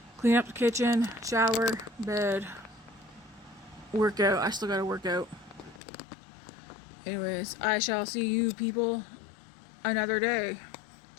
clean up the kitchen, shower, bed, workout. I still gotta work out. Anyways, I shall see you people another day.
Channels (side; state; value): right; drops out; at 5.8 s